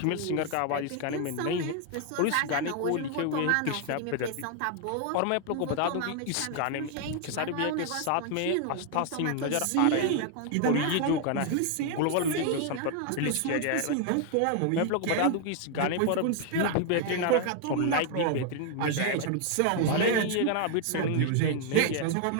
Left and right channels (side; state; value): both; different; correlation 0.00